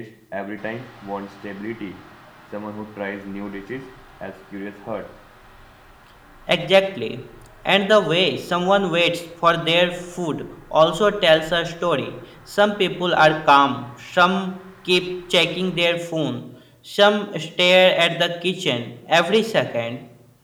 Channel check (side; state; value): both; identical; correlation 1.00